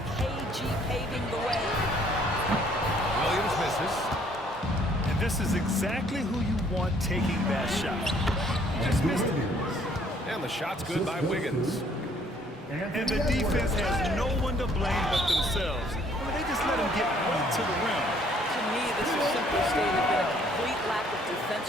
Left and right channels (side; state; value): both; normal; correlation 0.62